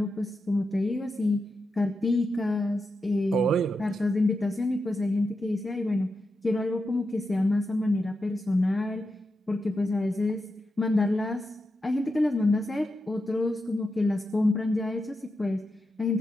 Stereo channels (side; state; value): both; normal; correlation 0.88